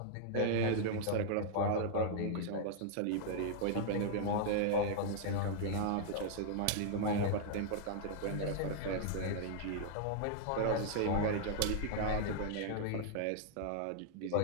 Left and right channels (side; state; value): both; different; correlation -0.01